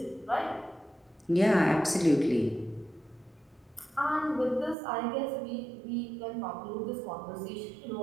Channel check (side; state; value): left; drops out; at 4.8 s